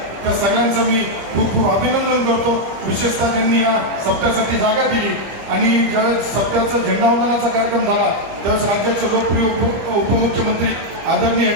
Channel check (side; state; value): left; late; 25 ms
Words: त्या सगळ्यांचं मी खूप खूप अभिनंदन करतो. विशेषतः ज्यांनी या सप्त्यासाठी जागा दिली. आणि ज्यावेळेस सप्त्याचा झेंडावंदनाचा कार्यक्रम झाला, त्यावेळेस राज्याचे लोकप्रिय उपमुख्यमंत्री आदरणीय